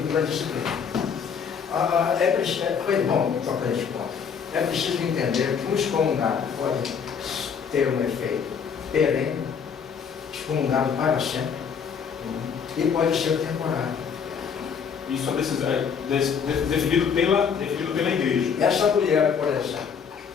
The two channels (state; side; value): quieter; right; 6.7 dB